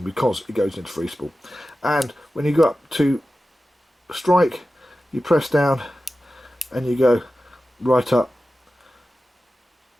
because it goes into free spool. And when you go up to strike, you press down and you go right up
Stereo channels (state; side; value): normal; both; correlation 0.94